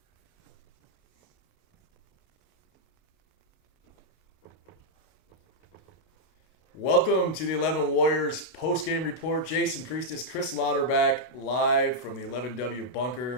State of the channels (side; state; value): right; late; 30 ms